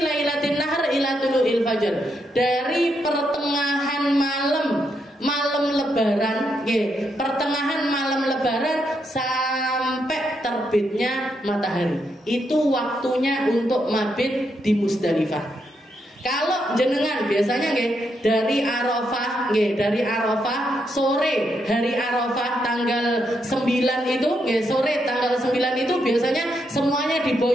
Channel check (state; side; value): normal; both; correlation 0.80